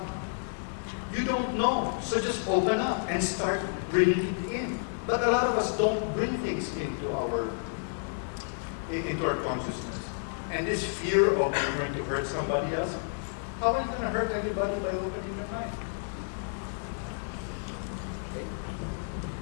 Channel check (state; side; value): silent; right; digital silence